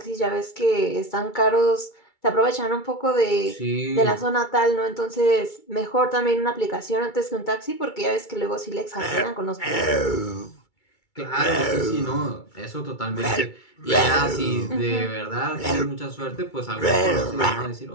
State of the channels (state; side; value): late; right; 2.3 ms